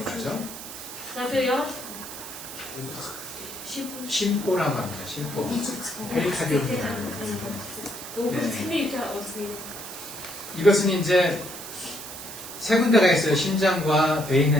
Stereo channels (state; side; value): noise; right; hiss, 11 dB below the sound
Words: 가죠. За тийм яа. 심포라고 합니다. 심포. 페리카디움. Өөрсний үеийн 이것은 이제 세 군데가 있어요. 심장과 배